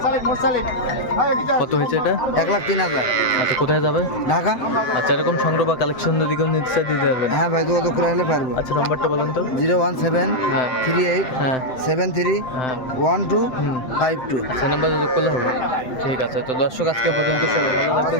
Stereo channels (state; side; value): late; right; 7.8 ms